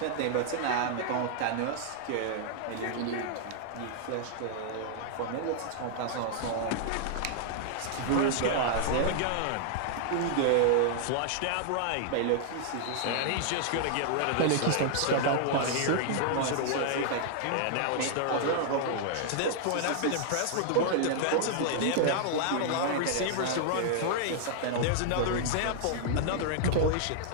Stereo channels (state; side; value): different; both; correlation -0.01